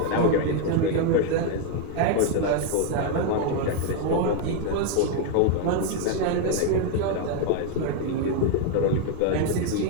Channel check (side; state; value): both; different; correlation 0.01